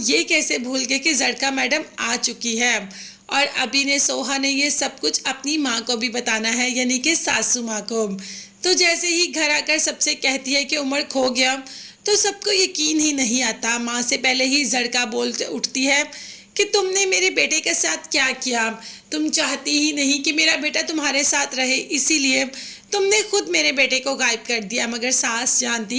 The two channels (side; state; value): both; identical; correlation 1.00